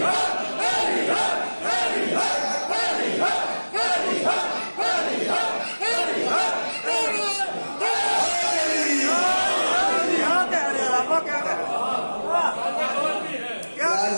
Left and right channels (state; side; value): inverted; both; correlation -1.00